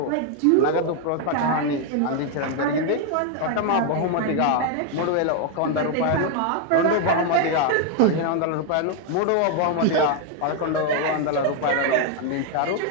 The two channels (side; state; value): both; different; correlation 0.01